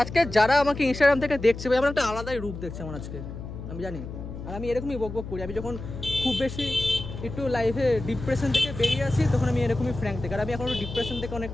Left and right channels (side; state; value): left; noise; hum, 10 dB below the sound